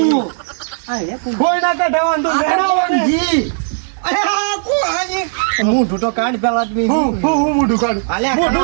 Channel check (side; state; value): left; silent; digital silence